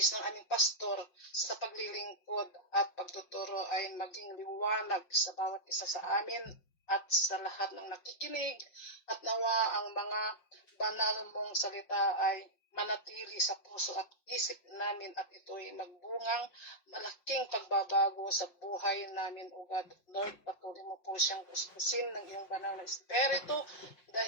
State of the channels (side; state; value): right; late; 5.6 ms